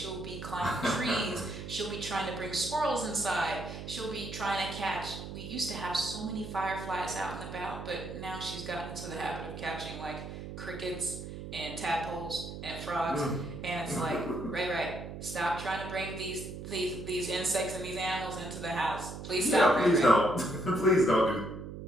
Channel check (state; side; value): noise; right; hum, 9 dB below the sound